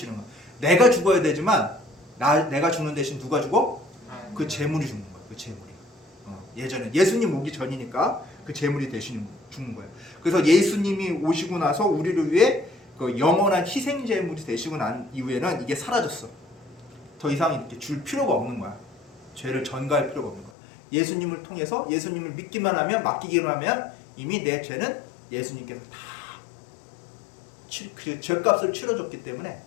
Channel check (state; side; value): drops out; right; at 20.5 s